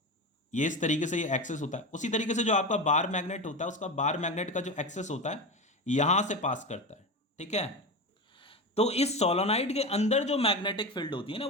ये इस तरीके से ये एक्सेस होता है। उसी तरीके से जो आपका बार मैग्नेट होता है उसका बार मैग्नेट का जो एक्सेस होता है यहां से पास करता है। ठीक है, तो इस सोलोनाइड के अंदर जो मैग्नेटिक फील्ड होती है ना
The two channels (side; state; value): both; normal; correlation 0.22